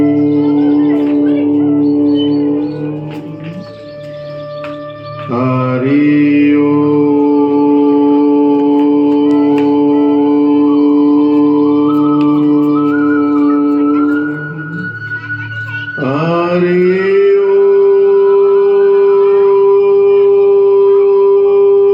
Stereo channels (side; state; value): both; identical; correlation 1.00